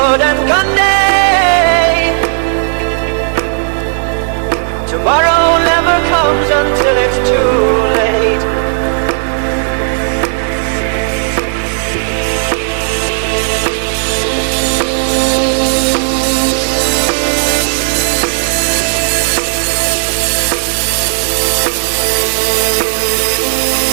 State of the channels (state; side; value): silent; left; 72 dB below the other